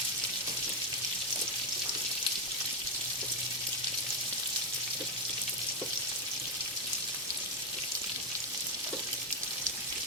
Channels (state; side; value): normal; both; correlation 0.04